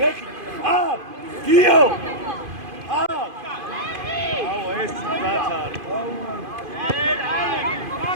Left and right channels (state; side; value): late; left; 2.5 ms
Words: გიო. აუ ეს ბაცარი.